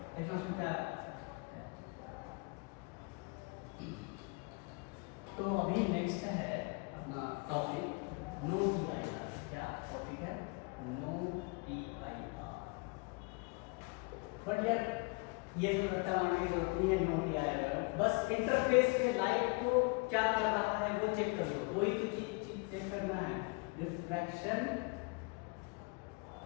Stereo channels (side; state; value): right; quieter; 30.8 dB